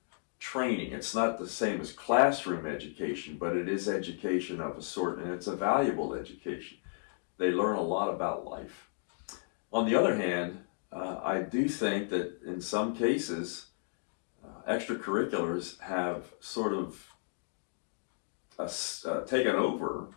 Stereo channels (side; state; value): right; silent; digital silence